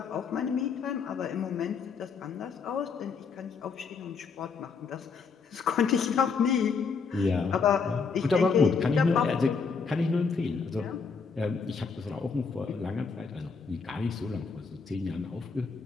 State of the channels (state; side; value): quieter; right; 5.2 dB